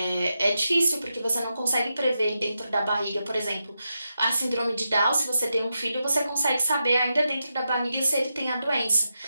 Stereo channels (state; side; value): inverted; both; correlation -0.87